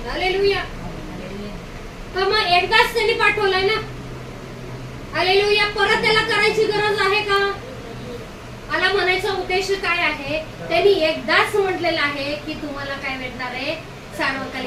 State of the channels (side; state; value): both; identical; correlation 1.00